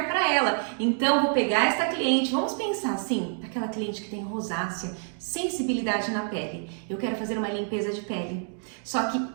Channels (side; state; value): left; silent; 56 dB below the other